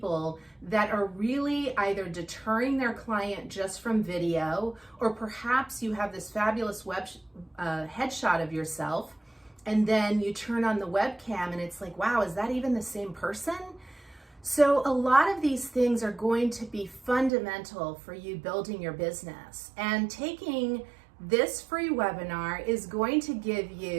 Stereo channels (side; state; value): left; drops out; at 17.3 s